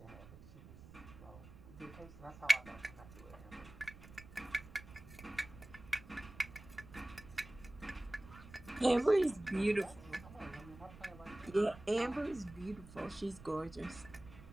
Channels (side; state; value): right; noise; rumble, 17 dB below the sound